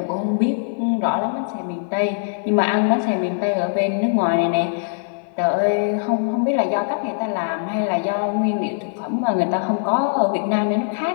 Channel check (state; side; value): silent; right; digital silence